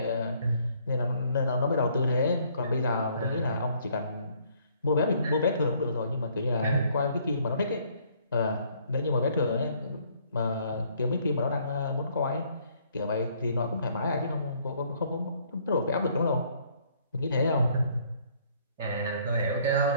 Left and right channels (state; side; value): inverted; both; correlation -0.64